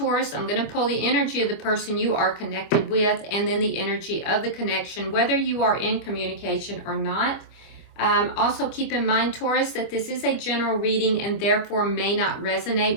I'm going to pull the energy of the person you are connected with and then the energy of the connection, whether you are in communication or not. Also keep in mind, Taurus, that this is a general reading and therefore may not resonate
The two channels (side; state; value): right; late; 25 ms